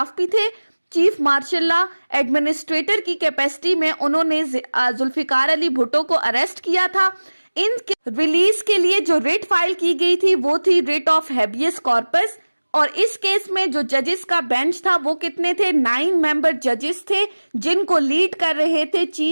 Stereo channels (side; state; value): both; inverted; correlation -1.00